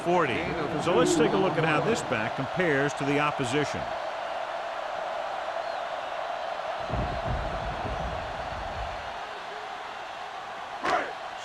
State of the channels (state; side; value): identical; both; correlation 1.00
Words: So let's take a look at how this back compares to the opposition.